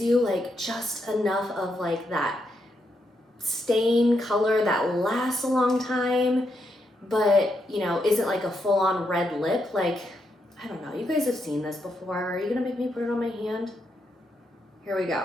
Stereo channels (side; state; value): both; normal; correlation 0.81